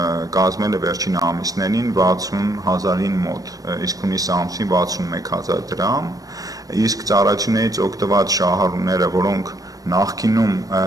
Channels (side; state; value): left; late; 0.18 ms